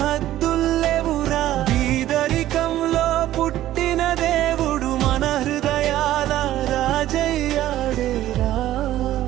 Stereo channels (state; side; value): quieter; left; 13.8 dB